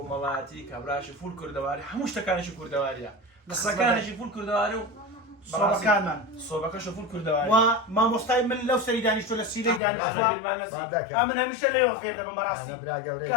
کابراچی فول کوردەواری هەموو شتەکانێکی کوردەواریە قسەکانێکی فول کوردەواری و سۆبەکانمان سۆبەکەشە فول کوردەواری و مامۆستای من لەو سەری دانیشتۆ لە سیرەی دانیشتووە من هەمیشە لێوە فێر دەبم بەڕاستی کە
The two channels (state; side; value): drops out; right; at 9.8 s